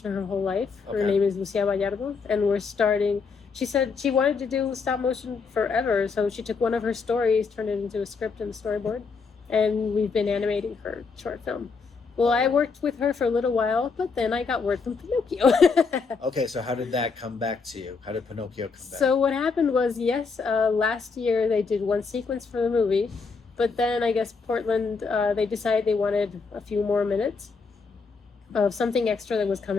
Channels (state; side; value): quieter; right; 4.9 dB